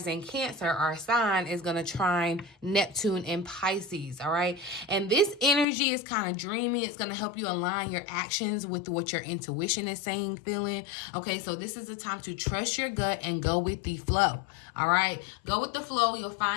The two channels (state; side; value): drops out; right; at 5.7 s